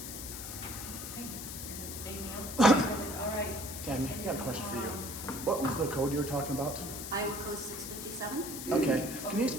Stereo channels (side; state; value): left; noise; hiss, 8 dB below the sound